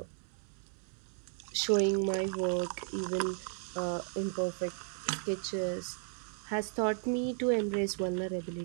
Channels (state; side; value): silent; left; 55 dB below the other